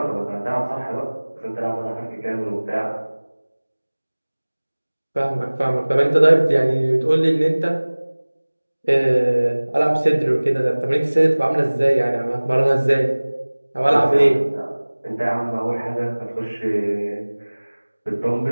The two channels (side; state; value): both; inverted; correlation -1.00